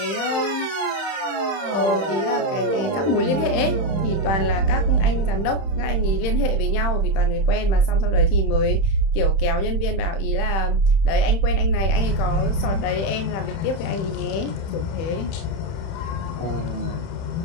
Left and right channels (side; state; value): right; late; 31 ms